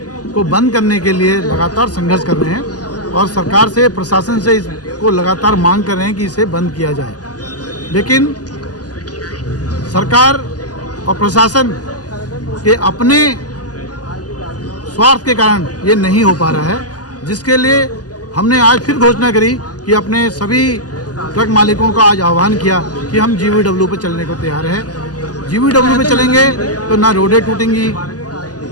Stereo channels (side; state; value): right; late; 0.68 ms